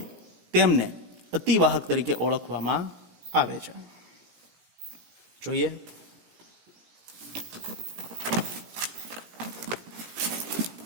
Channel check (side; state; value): left; late; 17 ms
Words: તેમને અતિવાહક તરીકે ઓળખવામાં આવે છે. જોઈએ